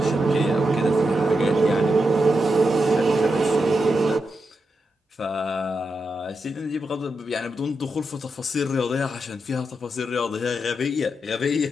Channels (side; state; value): both; normal; correlation 0.86